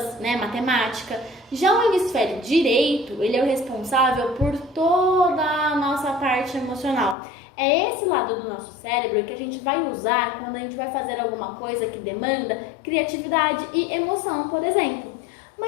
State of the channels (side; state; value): right; drops out; at 7.2 s